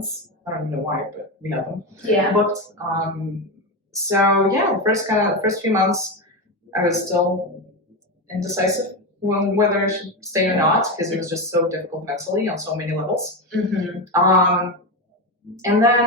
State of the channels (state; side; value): normal; both; correlation 0.15